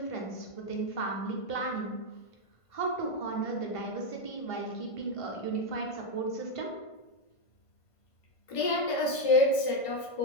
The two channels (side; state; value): right; late; 1.5 ms